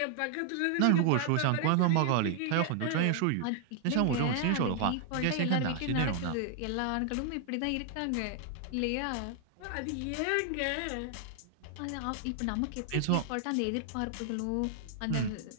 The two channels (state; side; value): different; both; correlation 0.00